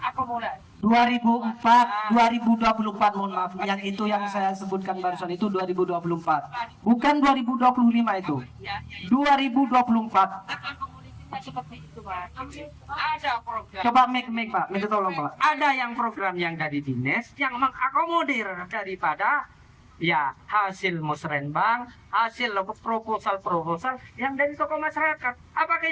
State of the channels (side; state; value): both; identical; correlation 1.00